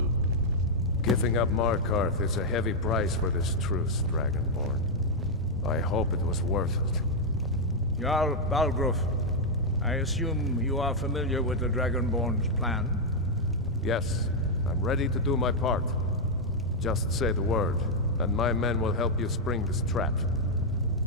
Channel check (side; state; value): both; normal; correlation -0.03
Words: Giving up Markarth is a heavy price for this truce, Dragonborn. I hope it was worth it. Jarl Balgruuf, I assume you are familiar with the Dragonborn's plan? Yes, I'm ready to do my part. Just say the word, and my men will help you spring this trap.